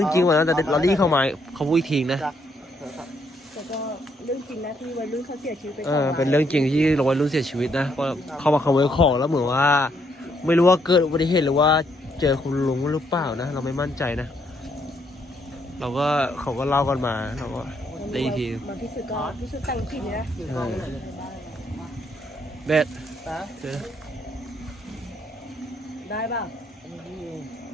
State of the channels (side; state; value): both; normal; correlation 0.73